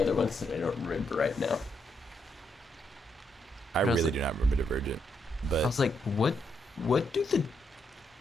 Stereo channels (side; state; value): both; normal; correlation 0.78